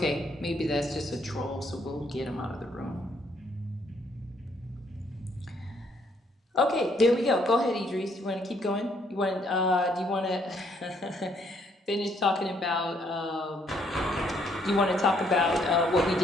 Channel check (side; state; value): both; normal; correlation 0.69